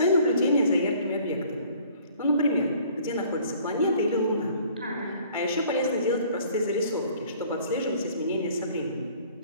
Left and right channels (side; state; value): both; inverted; correlation -0.55